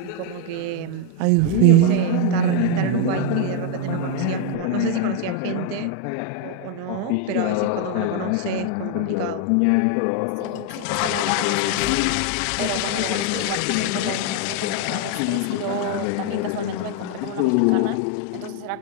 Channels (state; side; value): different; both; correlation 0.01